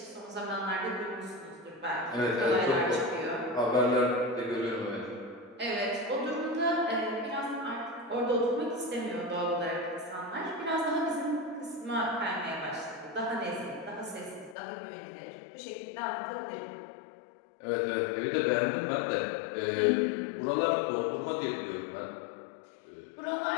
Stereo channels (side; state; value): right; drops out; at 14.6 s